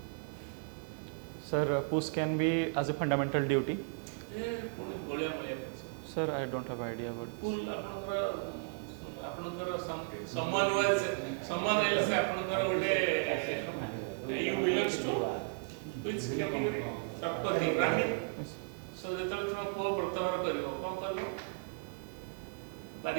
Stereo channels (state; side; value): quieter; left; 34.0 dB